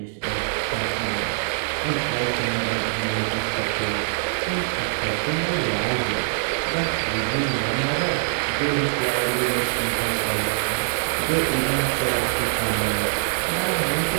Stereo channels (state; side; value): silent; left; digital silence